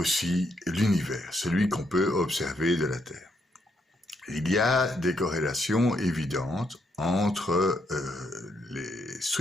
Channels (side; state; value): both; normal; correlation 0.76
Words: l'univers, celui qu'on peut observer de la Terre. Il y a des corrélations évidentes entre les